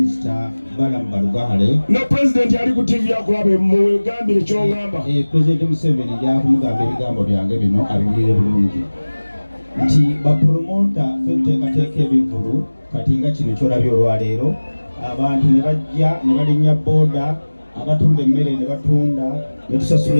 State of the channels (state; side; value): inverted; both; correlation -1.00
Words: Balamu Balugahale. Ne President ali ku TV akulabe mugambire ky'ongamba. President Museveni jakumugamba ebigambo byange bino abiwulire bulungi nti bapromota ffe tuteekateeka ebivulu kati nga kino kyolabye olwaleero abantu ne bajja ne balinnya booda, abatunda emmere ne batunda ne tusasula